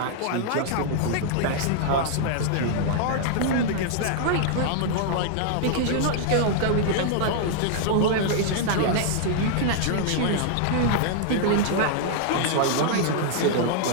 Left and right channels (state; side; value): different; both; correlation -0.01